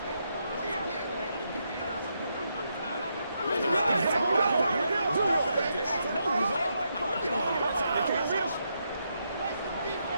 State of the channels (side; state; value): both; inverted; correlation -0.80